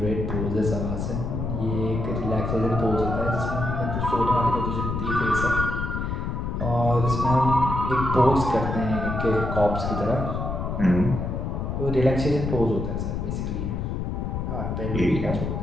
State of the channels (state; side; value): noise; left; rumble, 2 dB below the sound